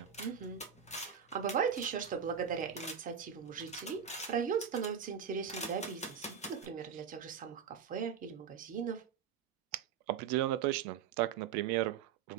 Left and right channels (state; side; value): quieter; left; 7.8 dB